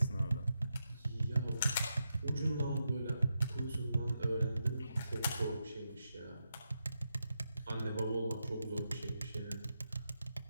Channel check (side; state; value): both; inverted; correlation -0.86